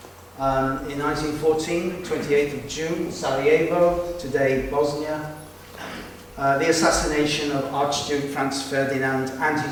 In 1914, 28th of June, Sarajevo, today Bosnia. The assassination of Archduke Franz Ferdinand and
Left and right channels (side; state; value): both; identical; correlation 1.00